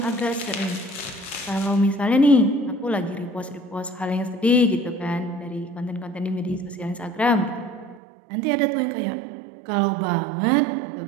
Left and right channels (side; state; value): left; drops out; at 8.0 s